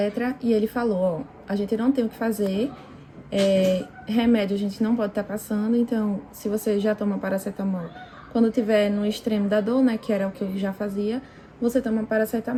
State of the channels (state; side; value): identical; both; correlation 1.00